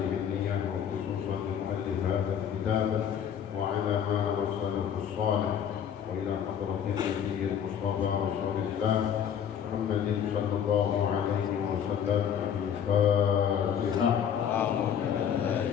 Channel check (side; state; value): right; quieter; 8.6 dB